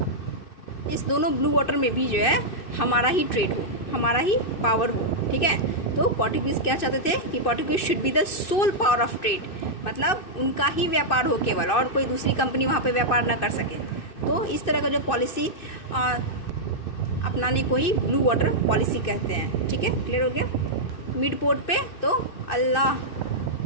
दोनों ब्लू वाटर में भी जो है हमारा ही ट्रेड हो, हमारा ही पावर हो। ठीक है? तो पोर्टुगीज़ क्या चाहते थे कि Portuguese should be the sole power of trade, मतलब उनका ही व्यापार हो केवल, और कोई दूसरी कंपनी वहाँ पे व्यापार ना कर सके। तो इस तरह का जो पॉलिसी अपनाने को ही ब्लू वाटर पॉलिसी कहते हैं। ठीक है? क्लियर हो गया? मिड पोर्ट पे तो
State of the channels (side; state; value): right; late; 2.6 ms